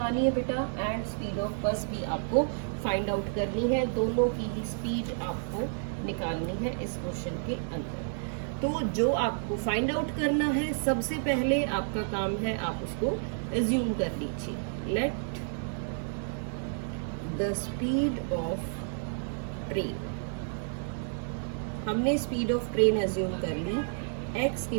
है बेटा एंड स्पीड ऑफ बस भी आपको फाइंड आउट करनी है. दोनों की ही स्पीड आपको निकालनी है इस क्वेश्चन के अंदर. तो जो आपको फाइंड आउट करना है, सबसे पहले आपका काम है आप उसको एज्यूम कर लीजिए. Let the speed of train. हमने स्पीड ऑफ ट्रेन एज्यूम कर ली x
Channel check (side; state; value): left; silent; digital silence